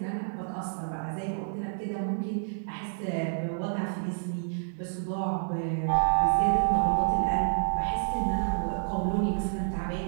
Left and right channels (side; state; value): left; silent; digital silence